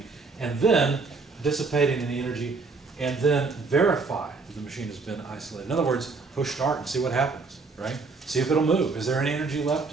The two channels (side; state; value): left; quieter; 4.2 dB